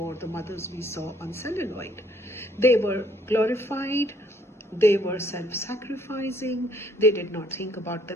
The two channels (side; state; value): both; normal; correlation 0.64